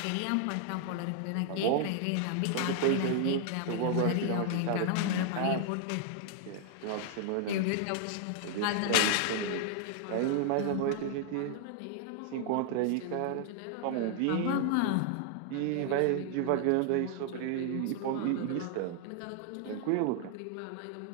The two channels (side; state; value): both; different; correlation 0.00